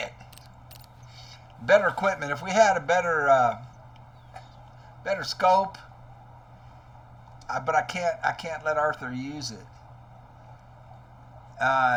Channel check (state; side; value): identical; both; correlation 1.00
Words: Better equipment. If we had a better scope, but I can't let Arthur use it.